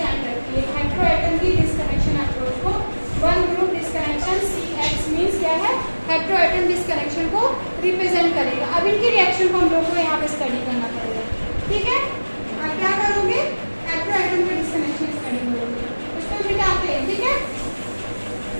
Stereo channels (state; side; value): inverted; both; correlation -1.00